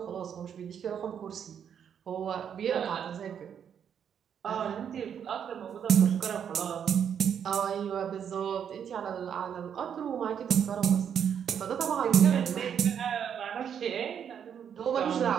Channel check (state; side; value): quieter; left; 8.2 dB